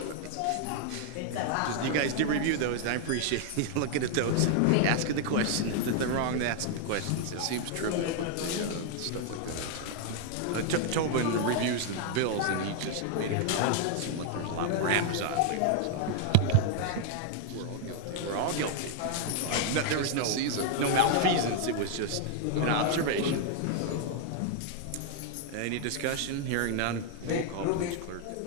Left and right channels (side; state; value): both; different; correlation 0.00